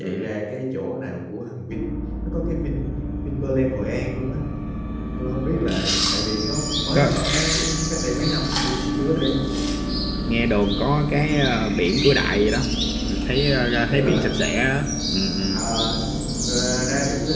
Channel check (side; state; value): both; identical; correlation 1.00